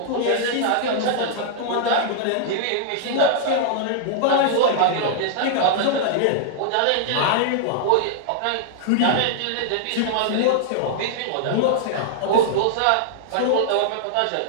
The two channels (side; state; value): both; different; correlation -0.01